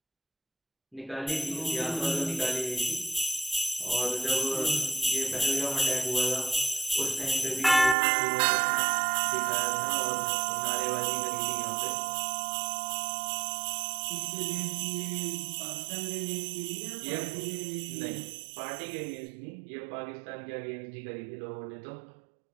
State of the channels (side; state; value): left; drops out; at 8.0 s